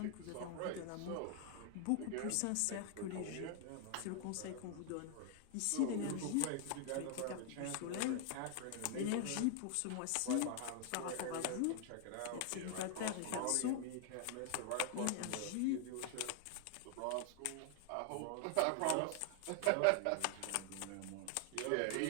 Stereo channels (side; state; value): both; different; correlation 0.00